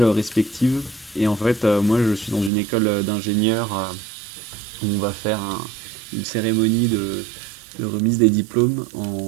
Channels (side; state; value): left; drops out; at 2.5 s